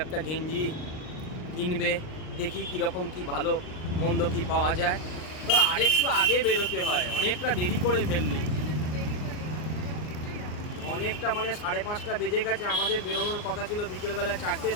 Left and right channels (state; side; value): late; right; 39 ms